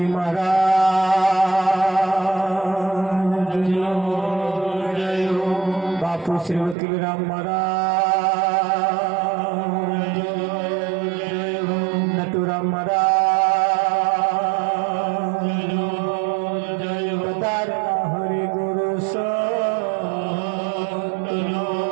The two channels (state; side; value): drops out; left; at 6.8 s